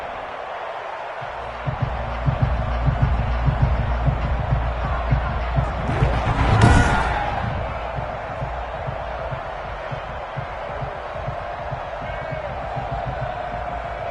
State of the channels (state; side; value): identical; both; correlation 1.00